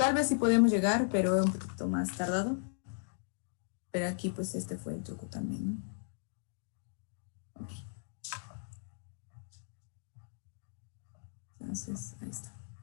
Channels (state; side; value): silent; right; digital silence